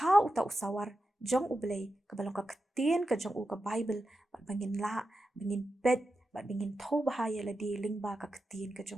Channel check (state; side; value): normal; both; correlation 0.90